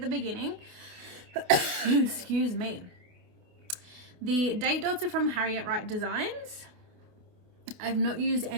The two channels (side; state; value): left; late; 28 ms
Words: beginning, excuse me, the date dots are from Harriet Wright Designs. I've not used